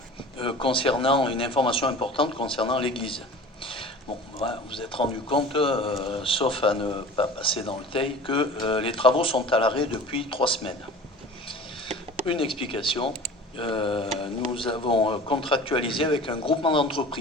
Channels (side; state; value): both; normal; correlation 0.40